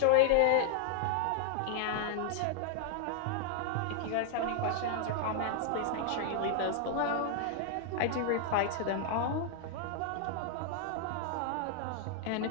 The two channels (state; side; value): different; both; correlation 0.00